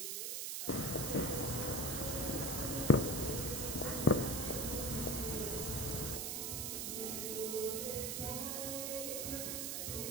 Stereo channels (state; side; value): noise; right; hiss, 2 dB below the sound